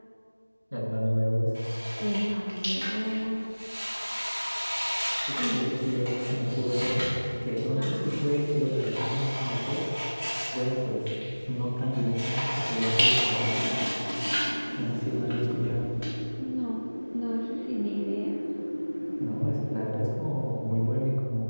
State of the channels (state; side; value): inverted; both; correlation -1.00